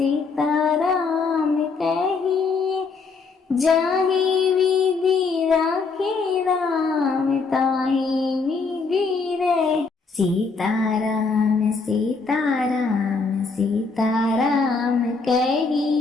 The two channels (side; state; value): right; quieter; 4.5 dB